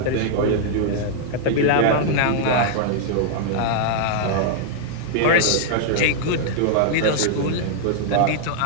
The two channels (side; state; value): both; different; correlation -0.01